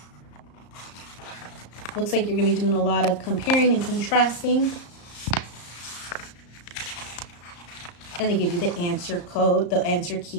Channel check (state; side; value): late; right; 34 ms